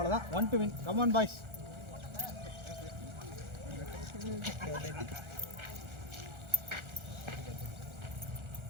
1 to win. Come on boys.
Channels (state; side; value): late; left; 1.4 ms